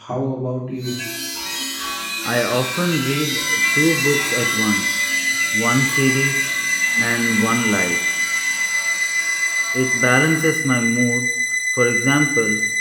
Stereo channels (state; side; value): identical; both; correlation 1.00